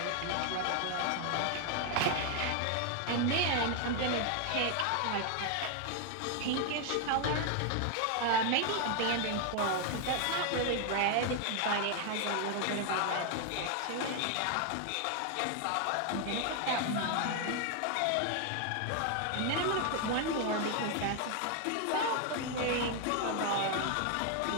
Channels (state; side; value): different; both; correlation 0.01